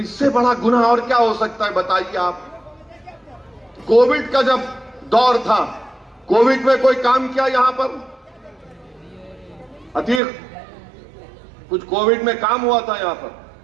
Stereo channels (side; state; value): left; drops out; at 10.2 s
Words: बड़ा गुनाह और क्या हो सकता है, बताइए आप। कोविड का जब दौर था, कोविड में कोई काम किया यहां पर? अतीक, कुछ कोविड में काम हुआ था यहां पर?